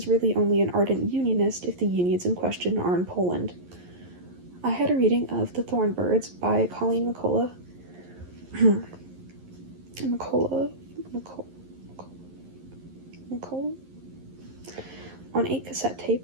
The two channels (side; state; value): left; late; 11 ms